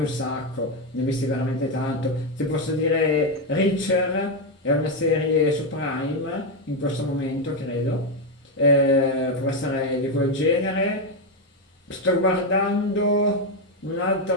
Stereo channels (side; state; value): both; normal; correlation 0.06